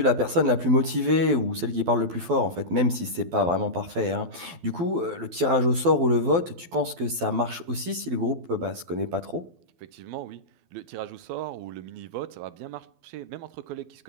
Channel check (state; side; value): late; left; 12 ms